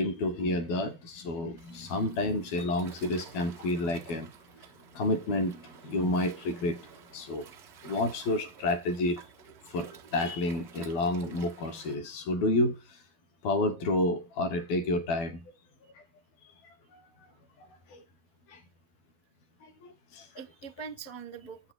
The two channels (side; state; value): right; late; 12 ms